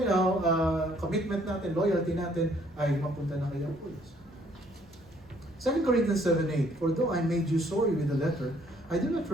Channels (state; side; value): noise; right; hum, 27 dB below the sound